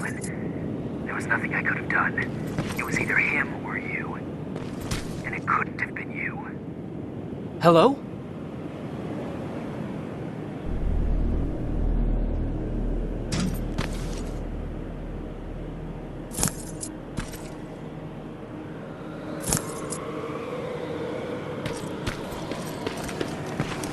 there was nothing I could have done. It was either him or you. And it couldn't have been you. Hello?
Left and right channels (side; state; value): both; identical; correlation 1.00